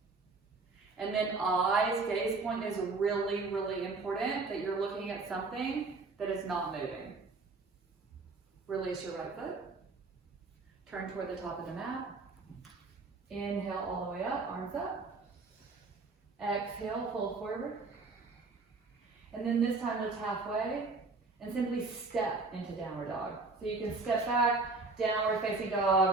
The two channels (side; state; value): left; quieter; 3.8 dB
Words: And then eyes, gaze point is really, really important that you're looking at something that is not moving. Release your right foot. Turn toward the top of the mat. Inhale all the way up, arms up. Exhale, fold forward. And then this time lift halfway and simply step into downward dog. So you can step back, downward facing